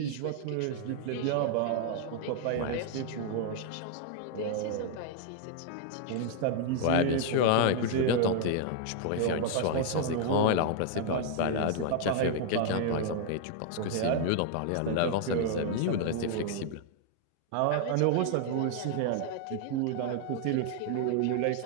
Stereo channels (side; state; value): both; different; correlation 0.00